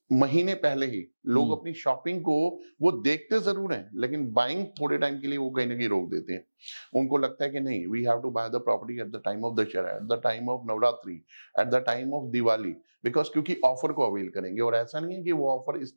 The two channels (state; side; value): inverted; both; correlation -1.00